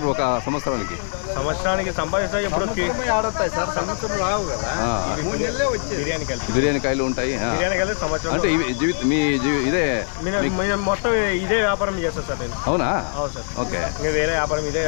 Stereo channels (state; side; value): silent; right; 63 dB below the other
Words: ఒక సంవత్సరానికి? సంవత్సరానికి సంపాదిస్తా ఎప్పుడు ఆడతాయి సార్. సంవత్సరం రావు కదా. బిర్యానీ కాయలు ఉంటాయి. అంటే మీ ఇదే మొత్తం ఇదే వ్యాపారం చేస్తా సార్ నేను. అవునా? అవును సార్. ఓకే. వేరే వ్యాపారం ఇదే